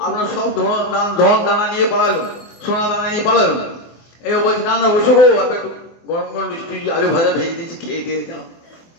আপনার সব ধন দানা নিয়ে পালালো, সোনা দানা নিয়ে পালালো। এই বলছি না না বসো গো, একটু গরম গরম মিষ্টি আলু ভাজা ভেজে দিয়েছি, খেয়ে দিয়ে যাও।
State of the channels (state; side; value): late; right; 24 ms